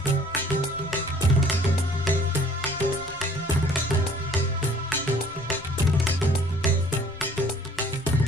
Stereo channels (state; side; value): noise; left; rumble, 21 dB below the sound